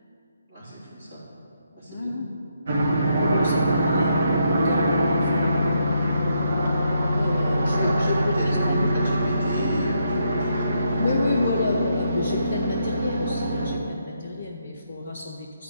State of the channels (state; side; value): inverted; both; correlation -0.78